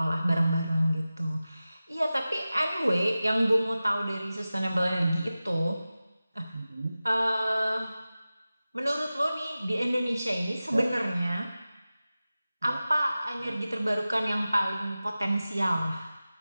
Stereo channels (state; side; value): inverted; both; correlation -0.96